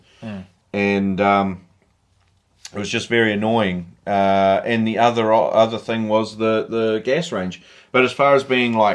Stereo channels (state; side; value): identical; both; correlation 1.00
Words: And it was just very annoying. And the other thing was the gas range. But as far as being